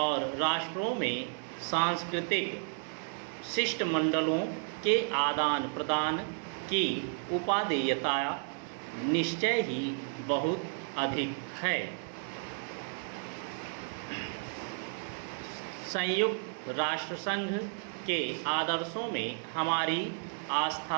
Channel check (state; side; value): silent; left; 56 dB below the other